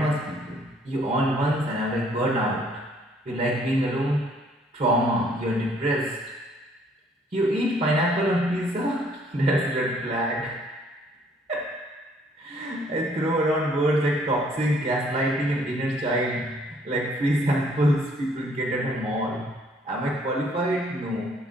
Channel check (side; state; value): both; normal; correlation 0.63